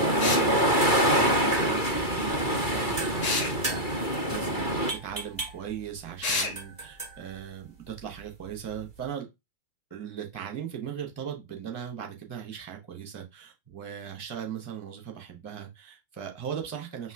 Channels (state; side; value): late; right; 2.3 ms